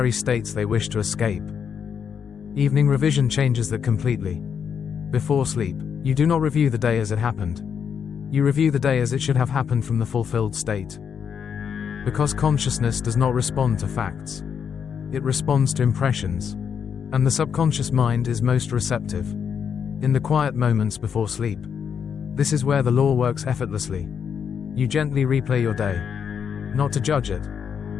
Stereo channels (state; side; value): quieter; right; 7.3 dB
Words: states they wish to escape. Evening revision changes that completely. Before sleep, you do not review the day as it happened. You review the day as it should have happened from the fulfilled state. Because consciousness does not respond to facts. It responds to impressions. And the subconscious mind is most receptive. In the quiet moments before sleep. This is where the law works effortlessly. You gently replay your day. Not to judge it,